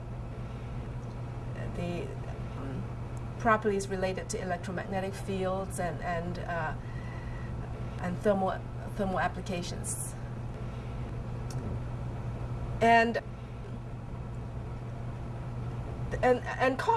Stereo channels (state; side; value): identical; both; correlation 1.00